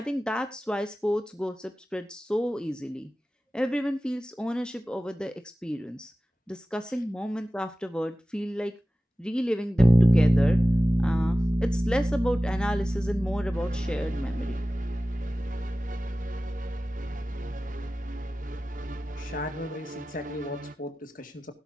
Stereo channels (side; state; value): both; normal; correlation 0.96